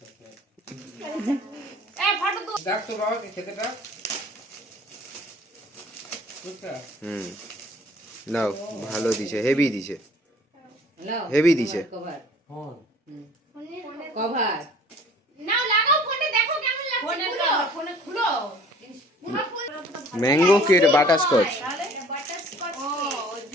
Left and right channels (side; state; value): both; normal; correlation 0.51